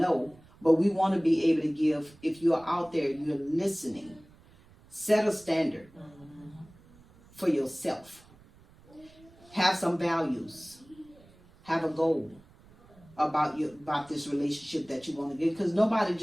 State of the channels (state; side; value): noise; right; rumble, 26 dB below the sound